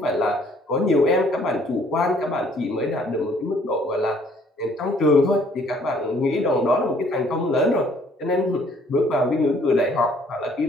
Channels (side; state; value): both; normal; correlation 0.61